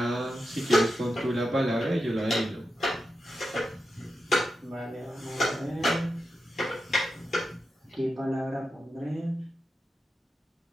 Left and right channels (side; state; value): both; normal; correlation 0.90